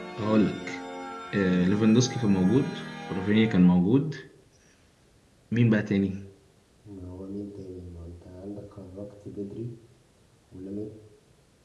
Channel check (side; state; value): both; identical; correlation 1.00